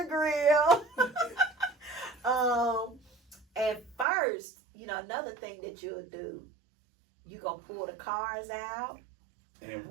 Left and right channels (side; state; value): left; drops out; at 4.0 s